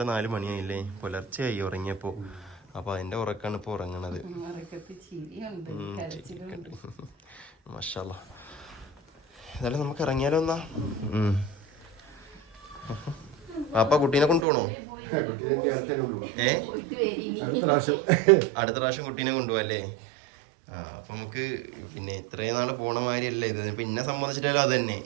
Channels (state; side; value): drops out; left; at 14.5 s